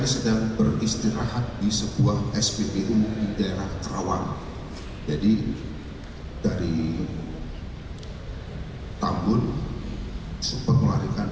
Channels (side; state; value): both; identical; correlation 1.00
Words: sedang beristirahat di sebuah SPBU di daerah Kerawang. Jadi dari Tambun sempat melarikan